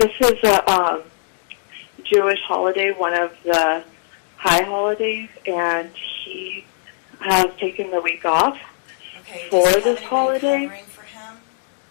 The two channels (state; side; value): silent; right; digital silence